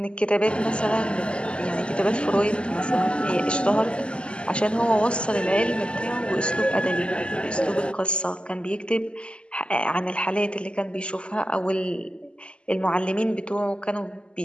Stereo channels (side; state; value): right; late; 0.053 ms